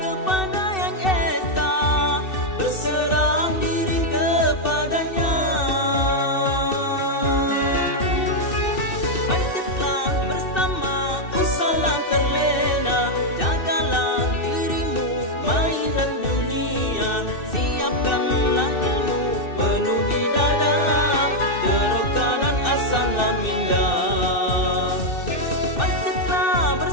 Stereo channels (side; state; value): right; late; 2.6 ms